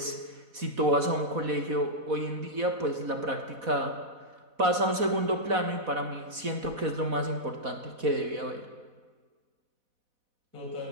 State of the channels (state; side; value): late; left; 4.1 ms